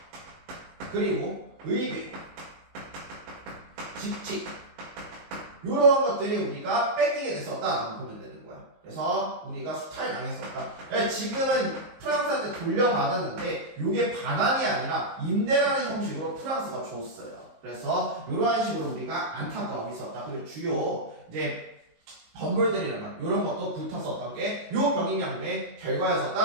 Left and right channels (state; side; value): late; left; 19 ms